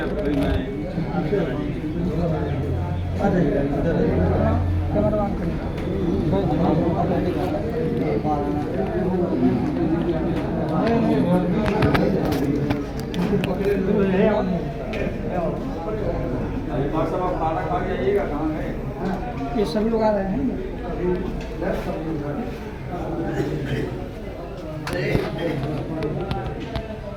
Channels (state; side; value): identical; both; correlation 1.00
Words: सभी लोग आ रहे हैं।